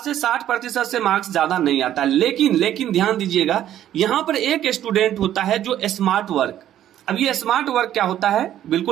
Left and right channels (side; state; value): left; quieter; 11.7 dB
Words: से 60% से मार्क्स ज्यादा नहीं आता। लेकिन ध्यान दीजिएगा, यहां पर एक स्टूडेंट होता है जो स्मार्ट वर्क। अब ये स्मार्ट वर्क क्या होता है,